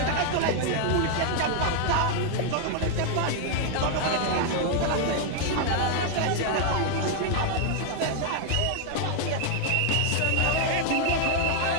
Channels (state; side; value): different; both; correlation 0.00